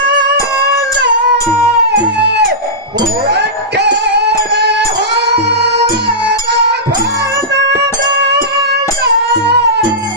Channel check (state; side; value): normal; both; correlation -0.14